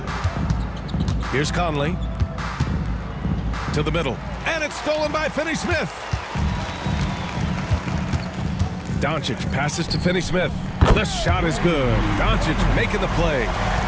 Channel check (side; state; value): both; identical; correlation 1.00